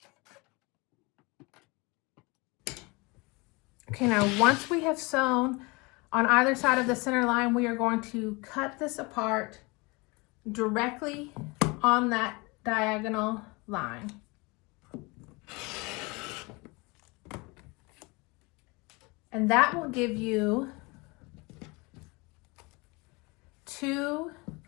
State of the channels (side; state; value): right; quieter; 26.5 dB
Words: Okay, now once we have sewn on either side of the center line, we are going to cut this apart directly on that diagonal line. And that will give you 2